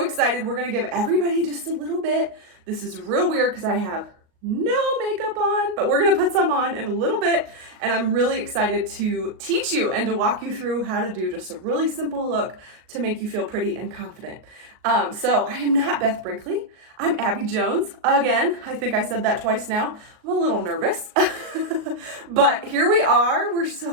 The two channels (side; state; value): left; late; 38 ms